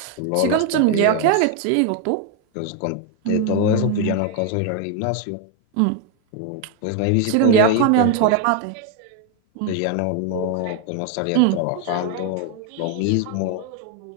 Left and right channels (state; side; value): different; both; correlation 0.01